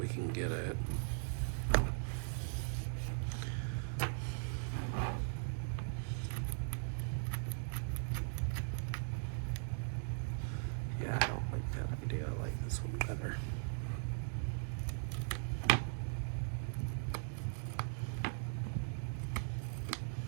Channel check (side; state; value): left; silent; digital silence